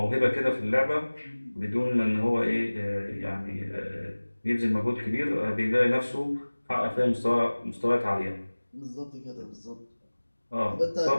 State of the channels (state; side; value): inverted; both; correlation -1.00